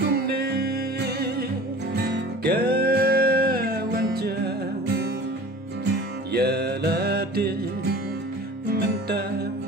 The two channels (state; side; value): normal; both; correlation 0.41